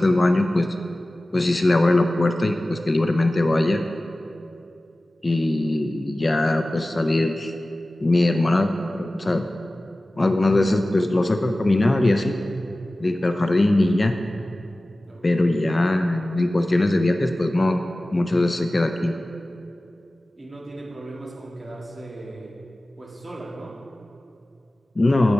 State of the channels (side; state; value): both; normal; correlation 0.97